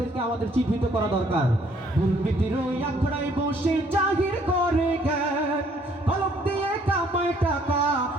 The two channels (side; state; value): both; normal; correlation 0.63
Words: আমাদের চিহ্নিত করা দরকার। দুর্নীতির ওই আখড়ায় বসে জাহির করে জ্ঞান, কলম দিয়ে কামায় টাকা